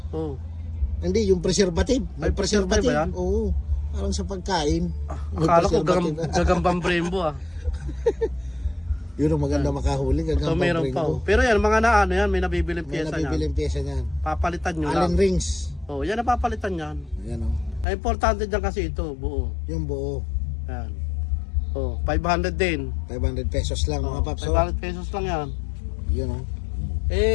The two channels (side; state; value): right; drops out; at 17.9 s